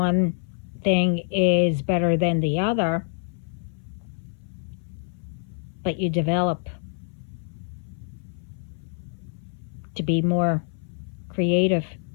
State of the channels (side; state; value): right; silent; 59 dB below the other